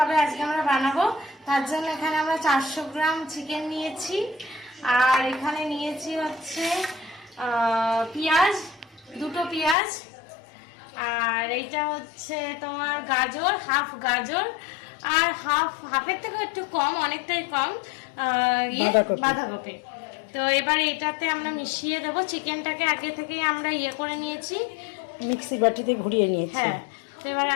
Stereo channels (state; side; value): drops out; right; at 9.8 s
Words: আজকে আমরা বানাবো। তার জন্য এখানে আমরা 400 গ্রাম চিকেন নিয়েছি, আর এখানে নিয়েছি হচ্ছে পেঁয়াজ, 2টো পেঁয়াজ, আর এইটা হচ্ছে তোমার গাজর, হাফ গাজর, আর হাফের থেকে একটু কম, অনেকটাই কম বাঁধাকপি। তো এবার এটাতে আমরা মিশিয়ে দেবো। চিকেনটাকে আগে থেকেই আমরা করে নিয়েছি, মিক্সি বাটিতে ঘুরিয়ে নিয়েছি। হ্যাঁ, তো এবার